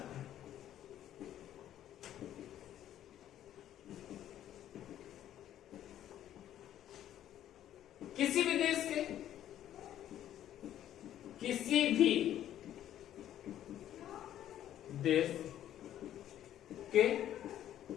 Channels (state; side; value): quieter; right; 11.6 dB